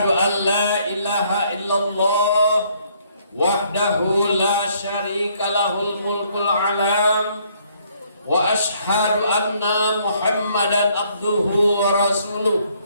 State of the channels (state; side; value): inverted; both; correlation -0.66